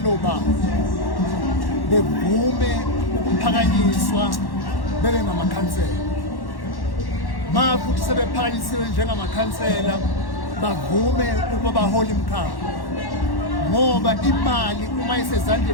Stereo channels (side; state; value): right; late; 1.1 ms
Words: babo bevume ukuphakanyiswa bebe ngamakhansela. Ma futhi sebephakanyisiwe njengamakhansela bavume ukuba bahole imkhakha, ngoba imali uma